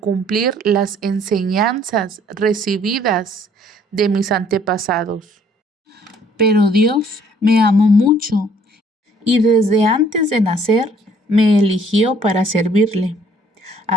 las enseñanzas recibidas de mis antepasados. Pero Dios me amó mucho y desde antes de nacer me eligió para servirle.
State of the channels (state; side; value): normal; both; correlation 0.60